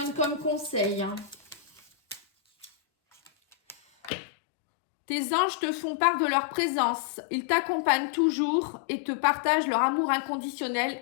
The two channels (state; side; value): drops out; right; at 4.1 s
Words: comme conseil? Tes anges te font part de leur présence. Ils t'accompagnent toujours et te partagent leur amour inconditionnel